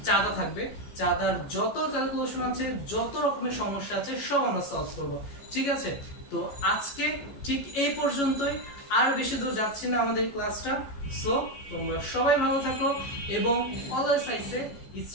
চাঁদা থাকবে, চাঁদার যত ক্যালকুলেশন আছে, যত রকমের সমস্যা আছে সব আমরা সলভ করব, ঠিক আছে। তো আজকে ঠিক এই পর্যন্তই, আর বেশি দূর যাচ্ছি না আমাদের ক্লাসটা। সো তোমরা সবাই ভালো থাকো এবং always I say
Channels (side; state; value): right; late; 14 ms